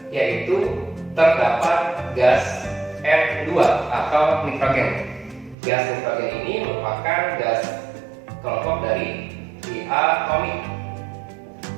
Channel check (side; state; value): left; drops out; at 5.6 s